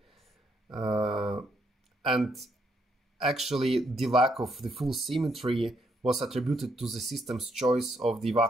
and actually the lack of the full symmetry was attributed to the system's choice of the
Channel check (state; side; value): normal; both; correlation 0.75